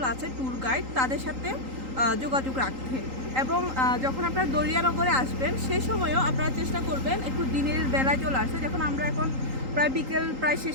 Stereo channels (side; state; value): left; late; 3.8 ms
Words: আছে, ট্যুর গাইড, তাদের সাথে যোগাযোগ রাখতে। এবং যখন আপনারা দরিয়ানগরে আসবেন সেই সময়ও আপনারা চেষ্টা করবেন একটু দিনের বেলায় চলে আসতে। যখন আমরা এখন প্রায় বিকেল প্রায়